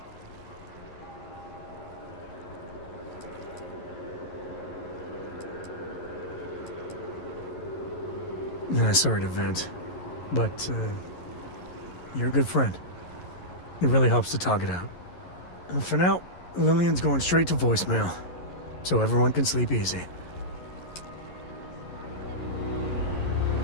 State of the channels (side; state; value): right; late; 11 ms